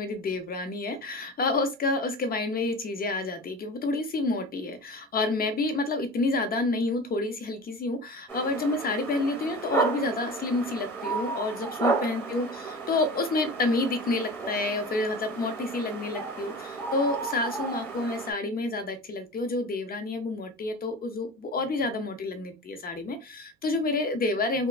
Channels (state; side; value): normal; both; correlation 0.34